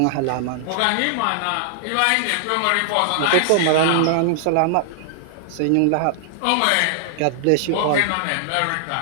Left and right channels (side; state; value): both; different; correlation -0.01